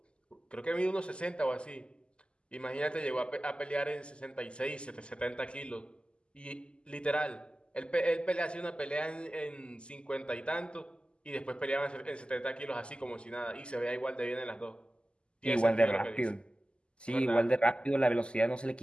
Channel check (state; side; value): late; right; 0.051 ms